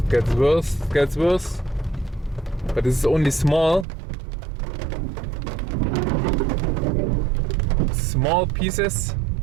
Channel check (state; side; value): drops out; left; at 3.9 s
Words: gets worse. But this is only small pieces.